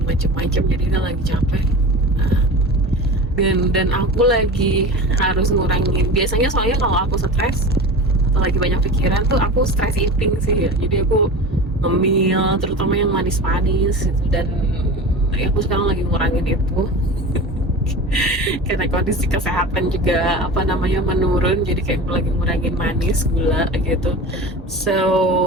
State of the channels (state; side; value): normal; both; correlation 0.32